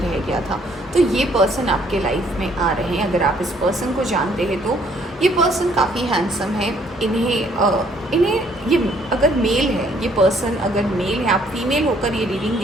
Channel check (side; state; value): both; normal; correlation 0.64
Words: गया था। तो ये पर्सन आपके लाइफ में आ रहे हैं। अगर आप इस पर्सन को जानते हैं तो ये पर्सन काफ़ी हैंडसम है। इन्हें ये अगर मेल है, ये पर्सन अगर मेल है, आप फीमेल होकर ये रीडिंग